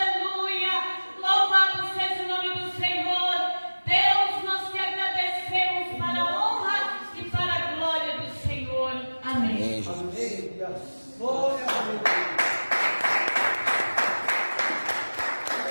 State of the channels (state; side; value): inverted; both; correlation -1.00